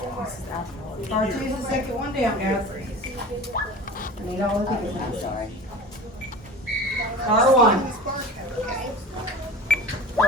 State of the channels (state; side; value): normal; both; correlation 0.37